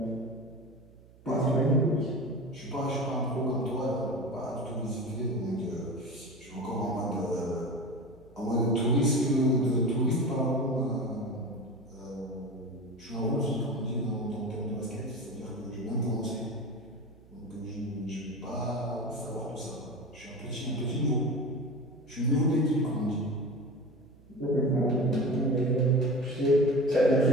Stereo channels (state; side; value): noise; right; hum, 25 dB below the sound